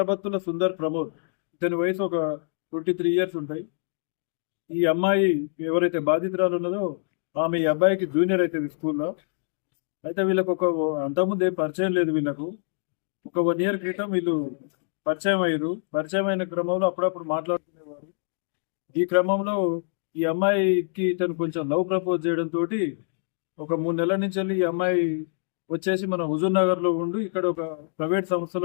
సుందర్ ప్రమోద్. ఇతని వయసు ఒక 23 ఇయర్స్ ఉంటాయి. ఈ అమ్మాయి ఎవరైతే బాధితురాలు ఉన్నదో ఆమె ఈ అబ్బాయికి జూనియర్ అవుతుంది స్కూల్లో. అయితే వీళ్ళకు అంతకుముందు ఏం పరిచయం లేదు. వీళ్ళకు ఒక 1 ఇయర్ క్రితం వీళ్ళు పరిచయం అయ్యారు. పరిచయం అయిన క్రమంలో అప్పుడప్పుడు మాట్లాడుకునేవారు. ఈ క్రమంలో ఈ అమ్మాయికి ఇతను కొంచెం లవ్ ప్రపోజ్ చేయడంతో ఒక 3 నెలల నుంచి వెళ్ళి ఈ అమ్మాయి వచ్చేసి మన హుజూర్ నగర్ లో ఉండి ఇక్కడ ఒక ప్రైవేట్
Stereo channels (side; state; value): right; silent; digital silence